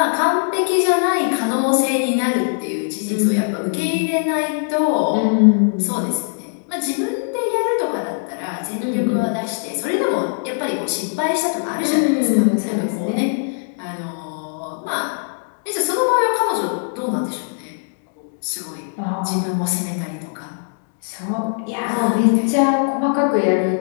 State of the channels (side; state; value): right; silent; digital silence